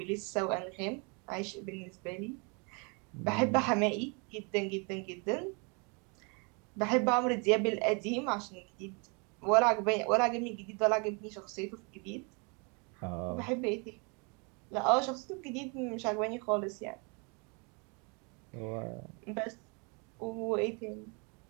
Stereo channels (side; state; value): left; quieter; 33.5 dB